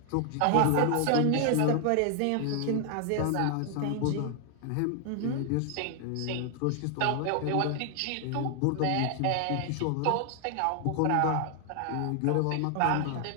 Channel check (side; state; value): both; different; correlation 0.00